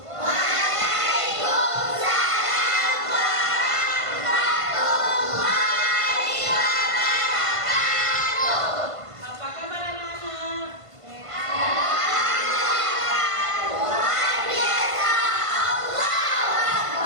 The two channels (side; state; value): left; late; 1.5 ms